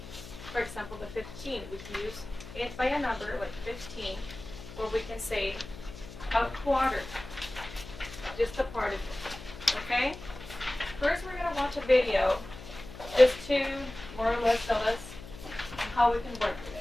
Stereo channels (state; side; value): noise; left; hum, 14 dB below the sound